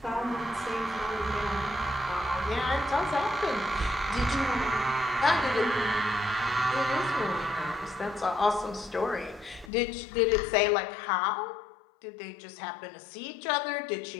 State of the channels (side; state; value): right; drops out; at 9.7 s